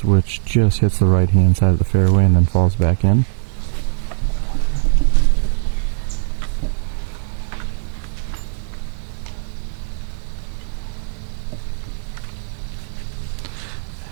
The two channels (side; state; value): left; silent; 66 dB below the other